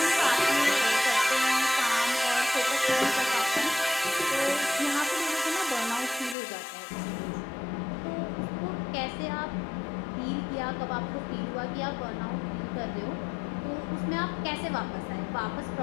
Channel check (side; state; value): right; drops out; at 6.4 s